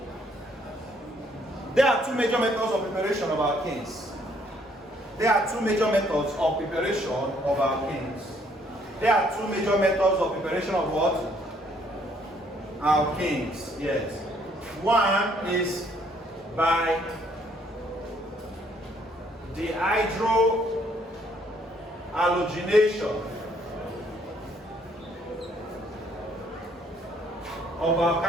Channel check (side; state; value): both; normal; correlation 0.66